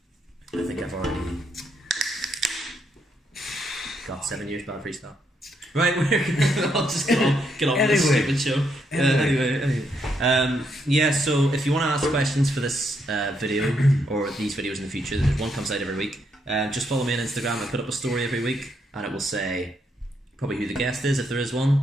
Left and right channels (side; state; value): both; normal; correlation 0.76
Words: I think I've already got 7 years bad freestyle. Right, we're gonna I'll just get on with this stupid show. Anyway. Yeah, so if you want to ask questions for this video or these videos in the future, one comes out every week. Just follow me on Instagram. I put up a story every week, and it will say probably who the guest is if there is